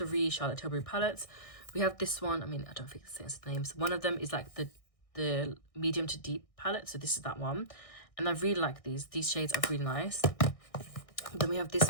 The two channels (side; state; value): right; late; 1.6 ms